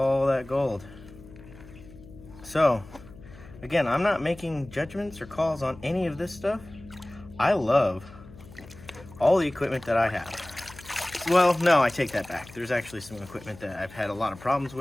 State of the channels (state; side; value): noise; left; hum, 19 dB below the sound